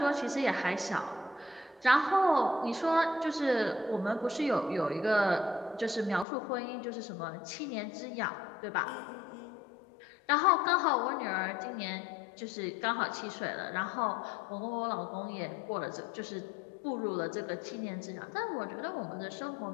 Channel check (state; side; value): drops out; right; at 6.2 s